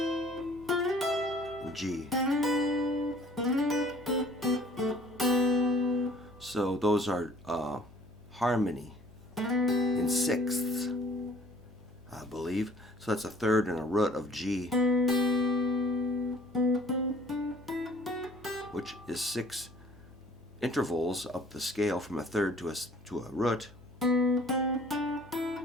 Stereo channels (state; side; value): noise; right; hum, 25 dB below the sound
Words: and G. So those are harmony in sixths, I believe. So that's a third and a root of G, which is 6 intervals up the scale from a third to a root. 1,